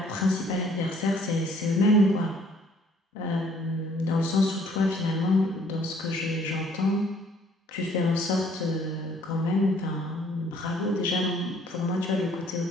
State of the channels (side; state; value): both; normal; correlation 0.60